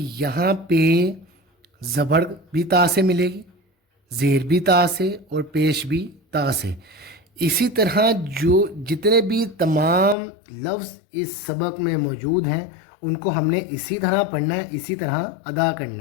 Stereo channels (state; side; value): drops out; right; at 10.2 s